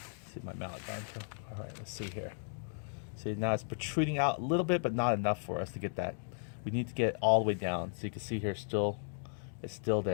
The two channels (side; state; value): right; silent; digital silence